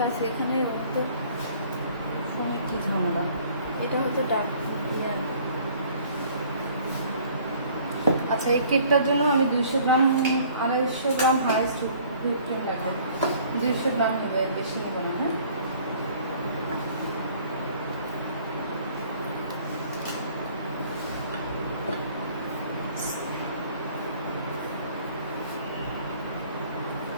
আছে। এখানে হয়তো ফোনে কি ঝামেলা? এটা হয়তো ডার্ক। আচ্ছা, এই কেকটার জন্য আমি 200 গ্রাম 250 গ্রাম হাইস্ট হুইপ ক্রিম লাগবে। 200 গ্রাম নেবে, বেশি নেবে না, হ্যাঁ?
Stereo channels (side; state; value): both; inverted; correlation -0.55